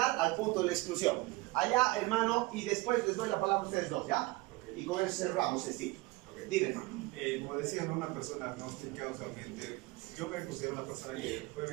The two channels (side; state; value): left; quieter; 21.7 dB